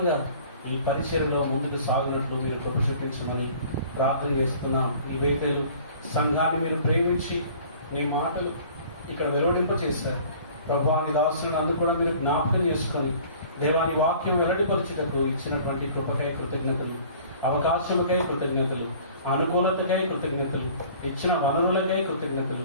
ఈ పరిచర్యలో ముందుకు సాగునట్లు మీరు కృప చూపించమని ప్రార్థన చేస్తున్నాం. ఈ వేతలు సంఘాన్ని మీరు ప్రేమించి మీ మాటలు ఇక్కడ వెలువడింప చేశారు. ప్రభువాని దాసులను అందుకు కూడా మీరు జ్ఞాపకం చేసుకొని దేవాని వాక్యం వెల్లడిపరచుటకు ఇచ్చినటువంటి కృపకై కృతజ్ఞతలు, అవకాశములకై కృతజ్ఞతలు, అనుకూలతకై కృతజ్ఞతలు, ఇచ్చిన వనరులకై కృతజ్ఞతలు.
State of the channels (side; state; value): both; inverted; correlation -0.49